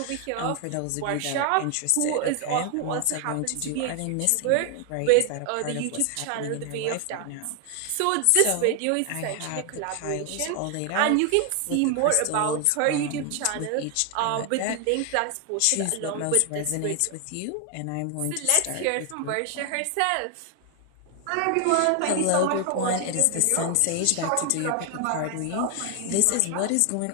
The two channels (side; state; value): both; different; correlation 0.00